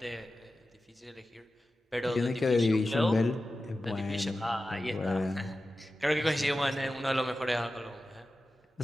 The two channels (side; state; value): both; normal; correlation 0.93